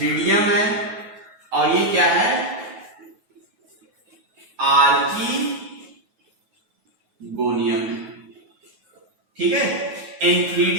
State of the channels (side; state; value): left; late; 9.3 ms